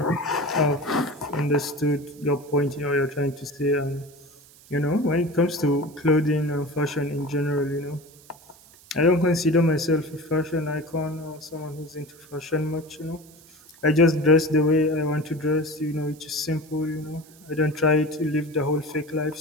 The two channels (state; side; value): noise; right; hiss, 24 dB below the sound